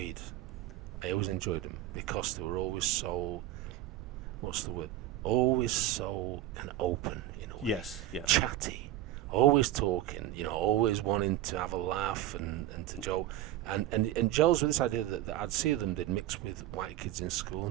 them because they were always so, what's the word? Always so kind of open, Yes. Yeah. Chatty, always talking, always wanting to have a laugh and to joke. And Joel's with this idea that I'd see them, they'd mix with white kids in school,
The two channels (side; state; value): left; quieter; 13.6 dB